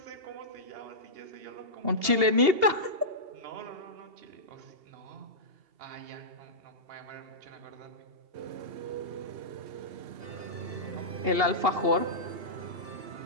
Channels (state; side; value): late; left; 2.8 ms